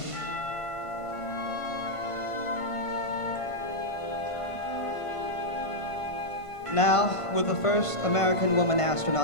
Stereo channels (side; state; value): right; late; 1.5 ms